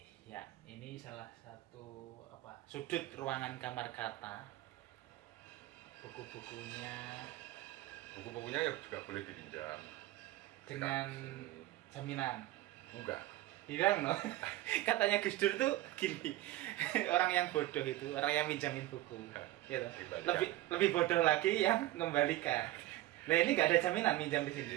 ya ini salah satu sudut ruangan kamar kata. Buku-bukunya ya juga boleh dipinjam dengan jaminan. Enggak. Hilang loh. Katanya Gus Dur tuh gini, orang yang bodoh itu orang yang minjamin buku, gitu. Lebih bodoh lagi yang mengembalikan. Nah ini nggak ada jaminan minjam di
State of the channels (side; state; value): left; quieter; 16.2 dB